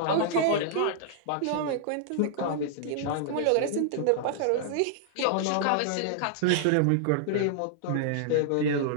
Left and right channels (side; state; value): both; different; correlation -0.01